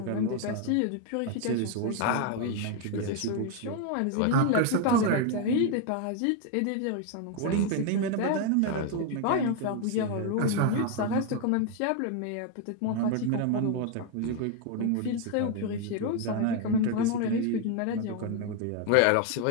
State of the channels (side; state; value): both; different; correlation 0.01